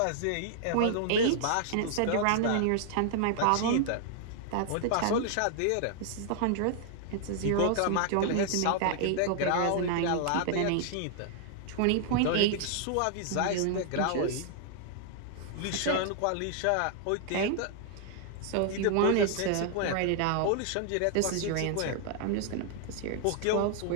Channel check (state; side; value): different; both; correlation 0.00